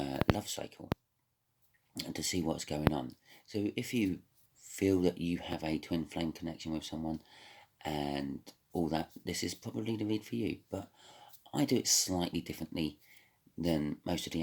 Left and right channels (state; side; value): identical; both; correlation 1.00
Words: cycle to see what's going on. So if you feel that you have a twin flame connection with someone and all that, this is probably the read for you, but I do it slightly differently than most of the